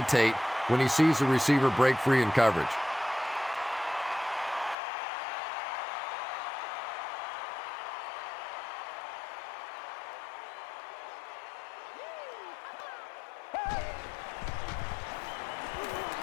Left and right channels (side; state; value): right; drops out; at 4.8 s